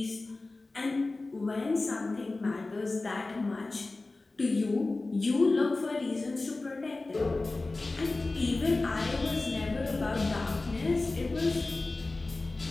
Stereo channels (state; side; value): quieter; right; 3.3 dB